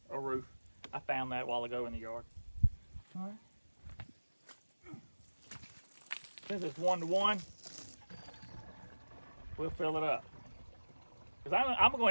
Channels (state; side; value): inverted; both; correlation -1.00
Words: a roof. I found that a while ago in the yard. All right. Since it's 1-to-1, we'll fill it up. Because I'm